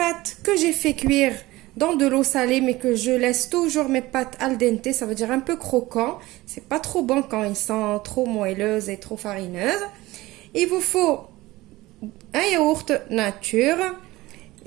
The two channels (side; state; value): left; quieter; 19.0 dB